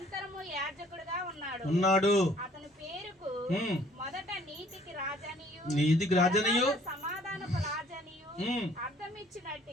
యాజకుడుగా ఉన్నాడు. అతని పేరుకు మొదట నీతికి రాజనియు సమాధానపు రాజనియు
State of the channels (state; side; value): normal; both; correlation 0.58